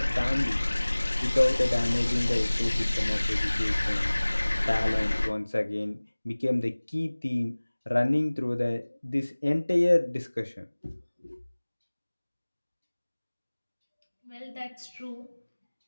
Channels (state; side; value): inverted; both; correlation -1.00